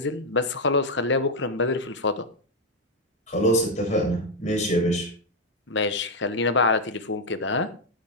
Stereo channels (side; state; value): both; normal; correlation 0.02